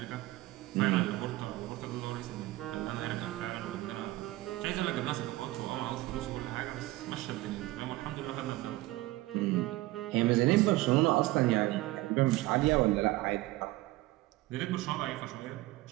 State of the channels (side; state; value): left; quieter; 18.5 dB